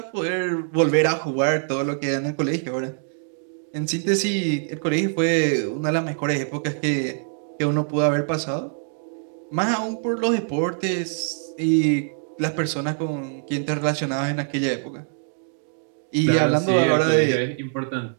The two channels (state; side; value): silent; left; digital silence